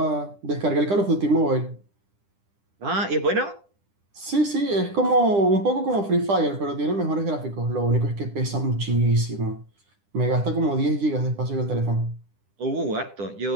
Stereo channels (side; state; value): left; late; 10 ms